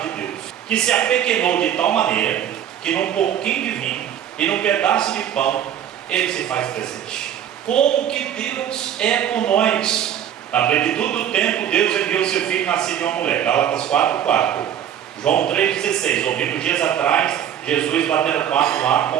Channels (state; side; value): quieter; left; 10.0 dB